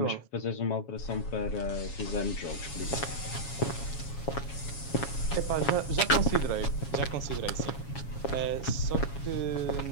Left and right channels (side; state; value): right; late; 7.2 ms